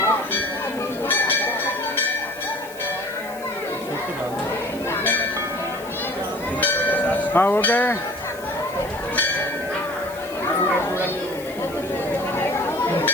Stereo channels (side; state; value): left; noise; hiss, 18 dB below the sound